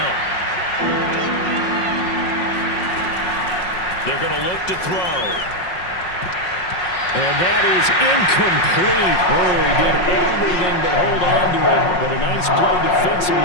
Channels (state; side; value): late; right; 5.5 ms